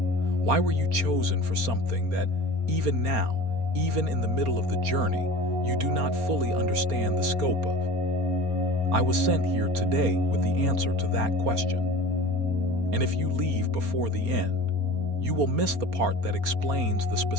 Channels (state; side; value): late; left; 4.3 ms